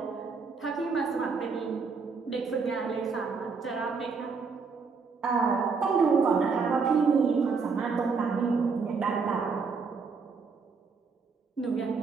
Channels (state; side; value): quieter; left; 5.0 dB